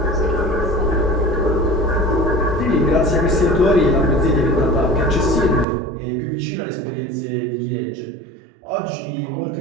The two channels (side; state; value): left; drops out; at 5.7 s